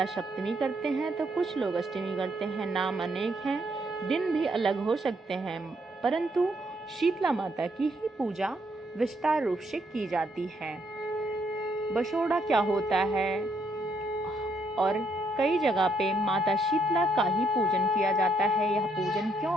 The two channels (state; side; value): normal; both; correlation 0.73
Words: सप्तमी करते हैं तो कुछ लोग अष्टमी करते हैं। नाम अनेक हैं, दिन भी अलग हो सकते हैं, परंतु शीतला माता की ही पूजा विस्तार रूप से की जाती है। बसोड़ा क्या होता है और कई जगह पे माता शीतला का ही पूजन किया जाता है। यह पूजन क्यों